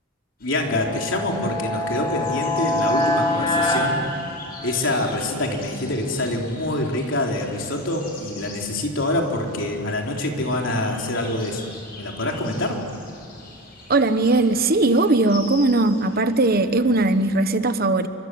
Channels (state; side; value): normal; both; correlation 0.27